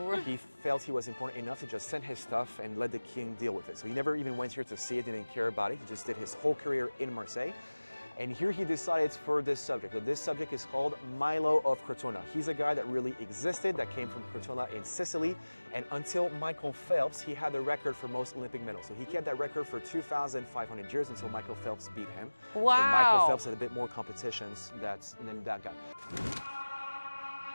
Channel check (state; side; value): inverted; both; correlation -1.00